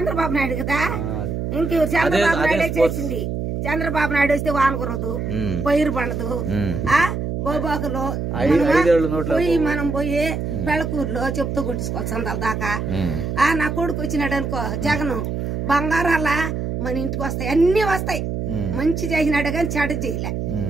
నాయుడు కదా. ఇంకెవరు చంద్రబాబు నాయుడే చేసింది. చంద్రబాబు నాయుడు వస్తే వాన కురదు, పైరు పండదు. బోబాకులో పోయి మనం పోయి పెళ్ళకూరులో చెప్తూ కుట్టించుకోవాలి సందాల దాకా. నా కొడుకు వచ్చినాడు అనుకో జగన్ బంగారాల మన ఇంటికి వస్తాయి, అన్ని వస్తాయి. మంచి చేసినాడు కానీ చెడ్డ చేయలే.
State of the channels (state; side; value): noise; right; hum, 3 dB below the sound